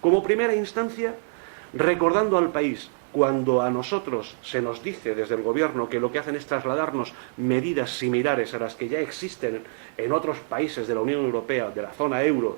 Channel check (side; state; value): left; silent; digital silence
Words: primera instancia, recordando al país, cuando a nosotros se nos dice desde el Gobierno que lo que hacen es trasladarnos medidas similares a las que ya existen en otros países de la Unión Europea, de la zona euro,